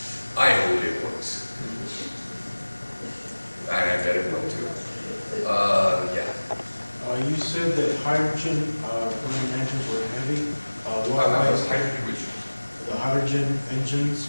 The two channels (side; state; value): both; inverted; correlation -1.00